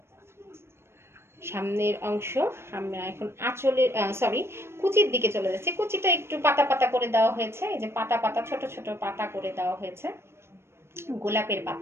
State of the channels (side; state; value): left; late; 0.12 ms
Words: সামনের অংশ। আমরা এখন আঁচলের কুচির দিকে চলে যাচ্ছি। কুচিটা একটু পাতা পাতা করে দেওয়া হয়েছে, এই যে পাতা পাতা, ছোট ছোট পাতা করে দেওয়া হয়েছে, গোলাপের